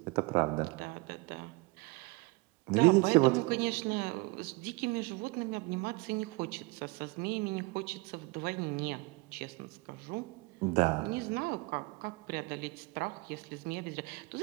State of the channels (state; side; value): quieter; left; 25.8 dB